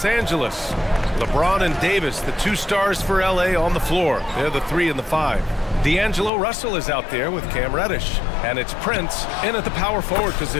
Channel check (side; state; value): right; drops out; at 6.3 s